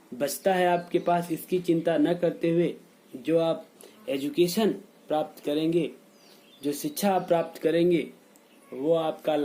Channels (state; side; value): identical; both; correlation 1.00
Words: बचता है आपके पास, इसकी चिंता न करते हुए जो आप एजुकेशन प्राप्त करेंगे, जो शिक्षा आप प्राप्त करेंगे, वो आपका